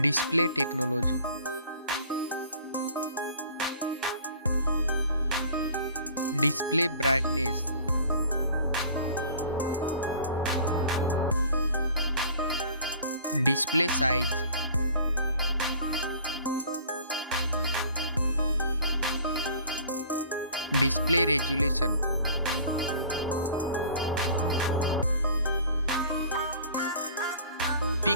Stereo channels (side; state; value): both; inverted; correlation -0.47